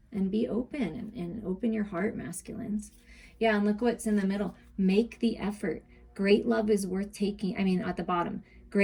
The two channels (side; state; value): both; identical; correlation 1.00